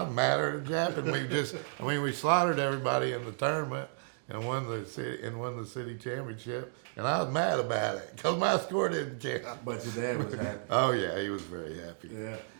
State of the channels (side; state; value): left; silent; digital silence